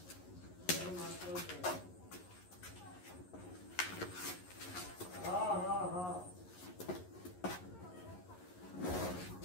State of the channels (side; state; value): right; late; 11 ms